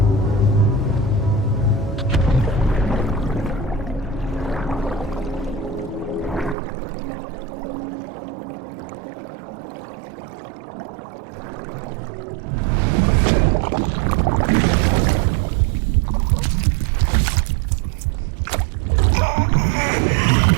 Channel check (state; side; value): drops out; left; at 6.6 s